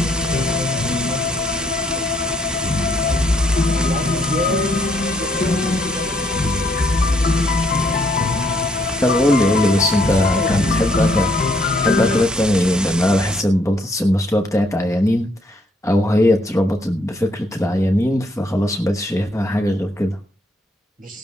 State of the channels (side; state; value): both; normal; correlation 0.70